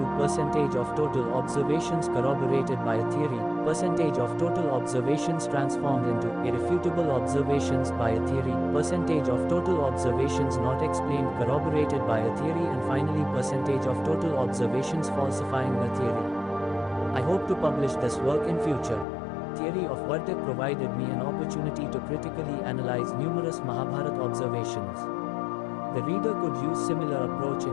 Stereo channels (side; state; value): right; drops out; at 19.1 s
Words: percentage of total observations corroborated by a theory, percentage of total observations transformed into irrefutable observations by a theory, percentage of total observations not explained corroborated by a theory, and finally percentage of total observations falsifying a theory. I hope to publish this work in future. Theory of Vartik provided me an opportunity to critically analyze numerous Mahabharata observations. The reader could use similar approach